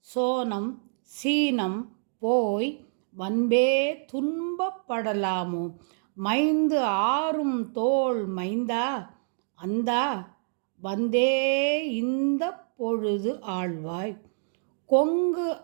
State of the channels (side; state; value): left; silent; digital silence